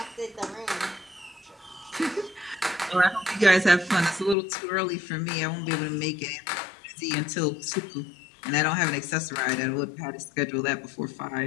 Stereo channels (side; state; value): right; drops out; at 4.4 s